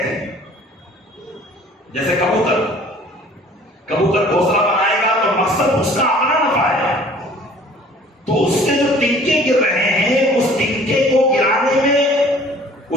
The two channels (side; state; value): both; normal; correlation 0.51